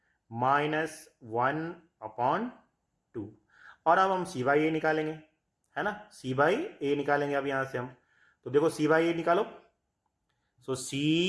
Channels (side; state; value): both; identical; correlation 1.00